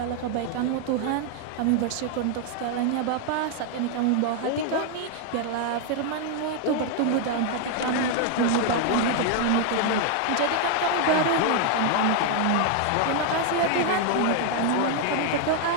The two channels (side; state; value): both; different; correlation 0.00